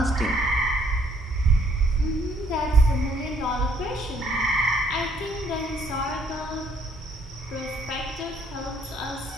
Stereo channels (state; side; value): normal; both; correlation 0.65